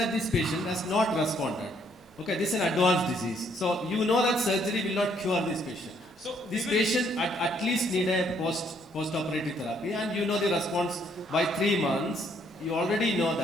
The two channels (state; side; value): normal; both; correlation 0.68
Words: this patient has not responded. Okay, this is an advanced disease. So you know that surgery will not cure this patient. So This we will- patient at least need a post-operative therapy, and you know the response by 3 months. You already know